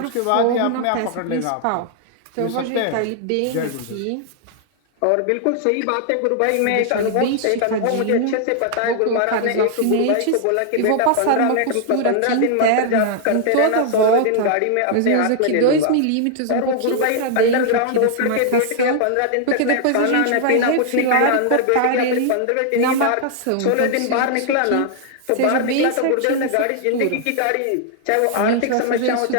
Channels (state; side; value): different; both; correlation 0.00